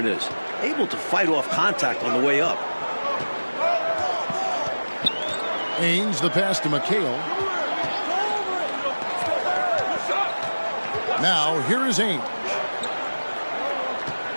is. Able to fight off contact on the way up. Ainge, the pass to McHale. Now, here is Ainge.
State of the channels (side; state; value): both; inverted; correlation -1.00